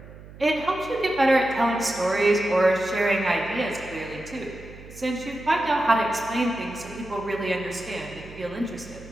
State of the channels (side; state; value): right; noise; hum, 17 dB below the sound